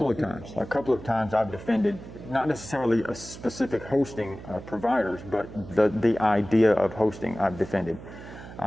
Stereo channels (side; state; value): right; noise; hum, 14 dB below the sound